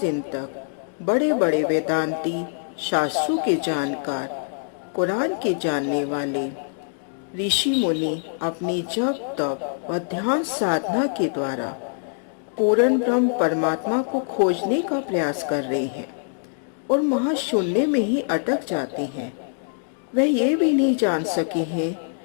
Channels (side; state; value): right; silent; digital silence